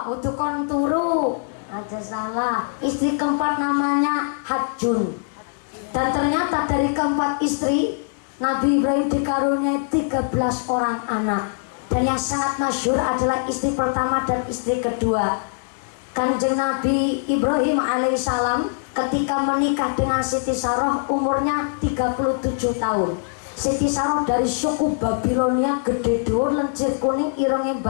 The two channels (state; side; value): silent; right; digital silence